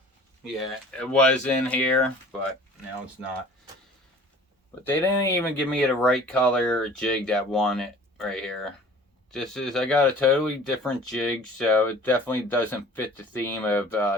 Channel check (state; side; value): normal; both; correlation 0.47